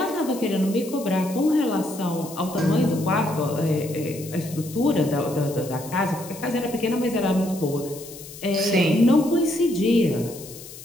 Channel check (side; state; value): left; noise; hiss, 15 dB below the sound